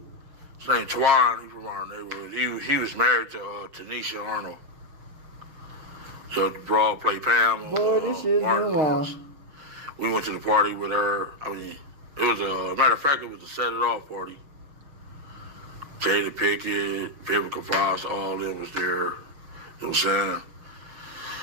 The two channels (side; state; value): left; late; 6.5 ms